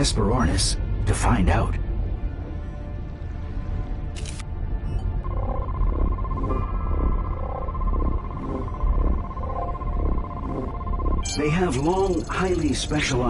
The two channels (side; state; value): both; identical; correlation 1.00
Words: to find out. They have long, highly